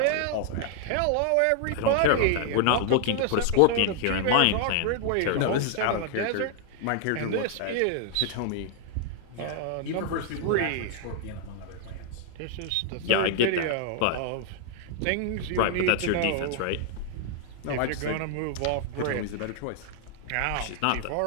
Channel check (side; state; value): both; different; correlation -0.01